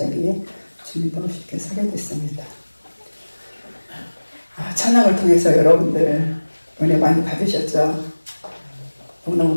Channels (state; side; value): inverted; both; correlation -1.00